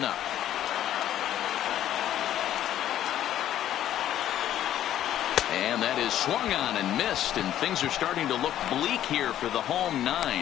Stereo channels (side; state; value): right; quieter; 11.8 dB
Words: up. And that is swung on and missed, and things are starting to look bleak here for the home